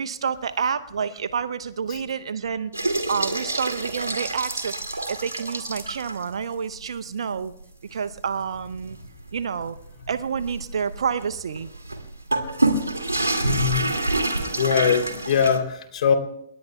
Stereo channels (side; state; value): both; inverted; correlation -0.67